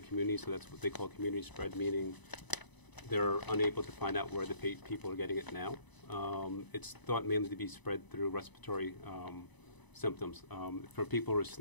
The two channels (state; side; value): late; right; 1.0 ms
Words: so that's what they call community spread, meaning they're unable to find out where the people are getting it now. It's thought mainly to be spread through respiratory symptoms. For people who are